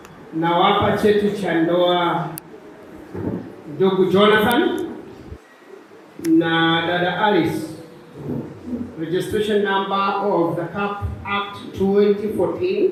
nawapa cheti cha ndoa ndugu Jonathan na dada Alice. Registration number of the CAP Act 2014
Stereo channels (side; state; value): both; identical; correlation 1.00